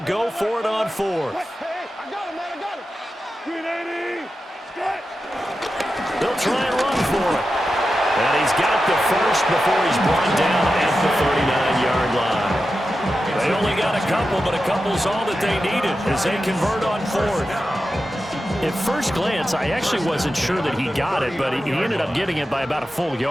go for it on 4th. Hey, I got him, man, I got him. 380. They'll try and run for it. And he's got the first before he's brought down at the 39-yard line. They only got a couple, but a couple's all that they needed as they convert on 4th. At first glance, I actually wasn't sure that he got it, but he ended up getting it by about a full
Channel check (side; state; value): both; normal; correlation 0.91